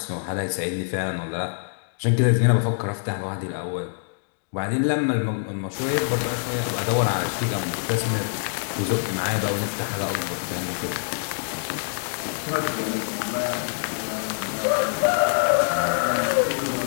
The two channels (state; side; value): silent; right; digital silence